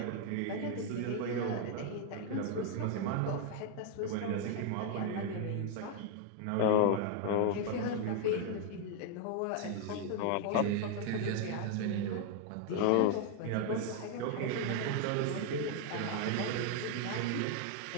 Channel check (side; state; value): both; different; correlation 0.00